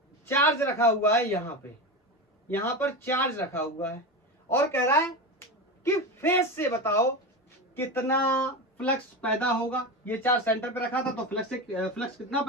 चार्ज रखा हुआ है, यहां पर चार्ज रखा हुआ है और कह रहा है कि फेस से बताओ कितना फ्लक्स पैदा होगा। ये चार्ज सेंटर पे रखा था तो फ्लक्स कितना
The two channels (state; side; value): normal; both; correlation 0.21